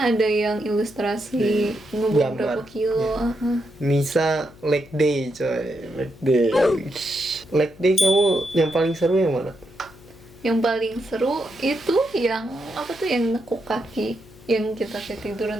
ada yang ilustrasi ngebuang Gambar. berapa kilo. Nisa leg day coy, leg day. Leg day kamu yang paling seru yang mana? Yang paling seru itu yang yang nekuk kaki, yang kita kayak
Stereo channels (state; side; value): noise; left; hum, 23 dB below the sound